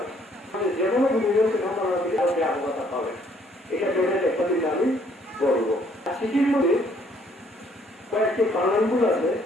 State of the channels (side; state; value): both; normal; correlation 0.64